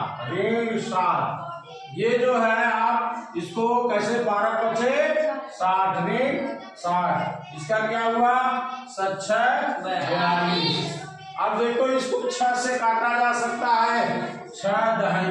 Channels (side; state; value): both; identical; correlation 1.00